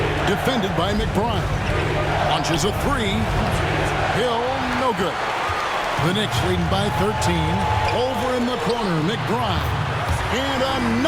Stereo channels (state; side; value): identical; both; correlation 1.00